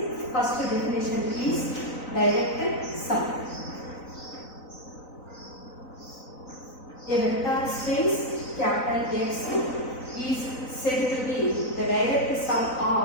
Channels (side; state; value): right; late; 4.0 ms